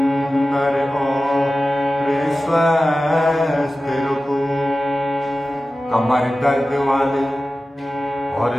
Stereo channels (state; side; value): normal; both; correlation 0.95